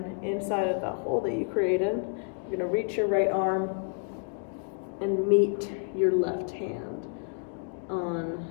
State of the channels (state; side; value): quieter; right; 38.1 dB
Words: inside of that hole that you created, you're going to reach your right arm and meet your left hand on